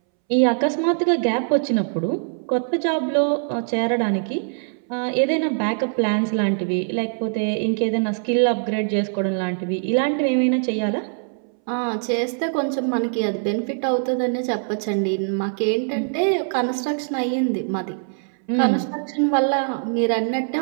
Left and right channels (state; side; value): silent; left; 64 dB below the other